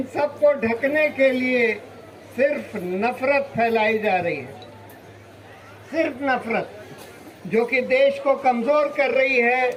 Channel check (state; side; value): identical; both; correlation 1.00